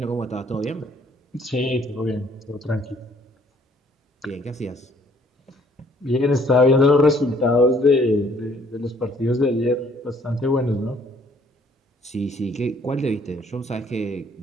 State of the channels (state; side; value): normal; both; correlation 0.62